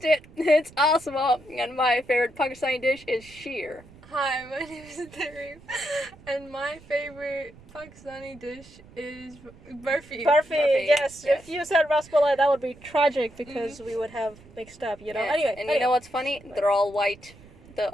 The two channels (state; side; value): noise; right; rumble, 22 dB below the sound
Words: it, it's Asma, and my favorite Pakistani dish is sheer. Hi, my name is Tehreem, and my favorite Pakistani dish is burfi. Burfi, yes. yes. If you said ras malai, that would be tragic because we would have mixed up, you know. Yeah. Anyway, You know what's funny? They're all white.